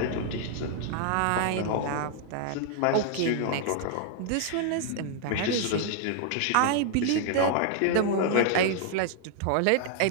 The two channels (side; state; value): both; different; correlation 0.00